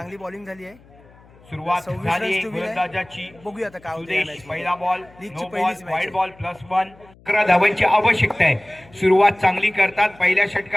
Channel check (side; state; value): left; noise; hum, 26 dB below the sound